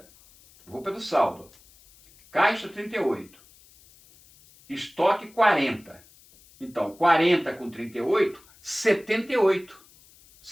vou pelo saldo. Caixa 38. Estoque 40. Então, 40 com 38, 78.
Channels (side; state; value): left; noise; hiss, 27 dB below the sound